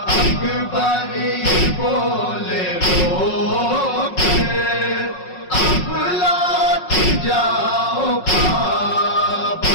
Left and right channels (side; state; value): right; late; 5.5 ms